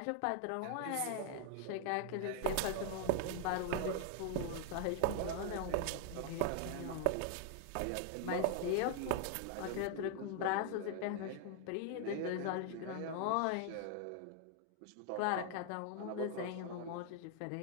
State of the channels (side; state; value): both; different; correlation 0.00